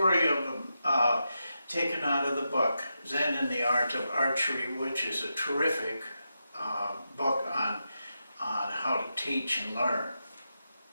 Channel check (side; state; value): both; inverted; correlation -0.87